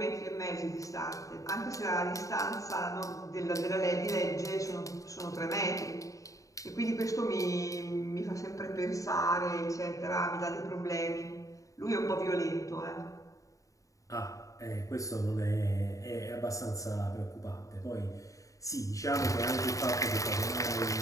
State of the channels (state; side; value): late; right; 0.16 ms